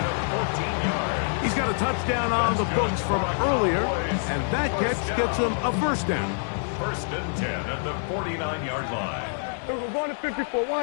He's got a touchdown on the books from earlier, and that catch gets him a first down. 1st and 10 at the 49-yard line. We're going to 54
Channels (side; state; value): right; silent; 61 dB below the other